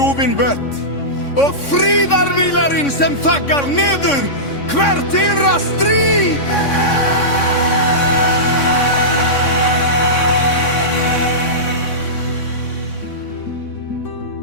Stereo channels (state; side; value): late; right; 3.6 ms